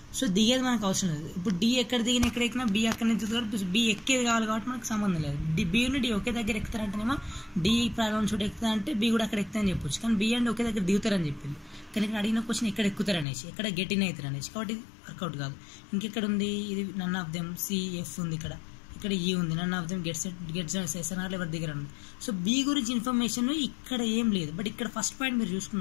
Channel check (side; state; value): right; drops out; at 13.2 s